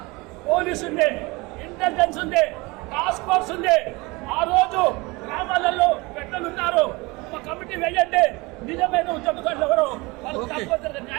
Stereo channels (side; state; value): left; quieter; 24.3 dB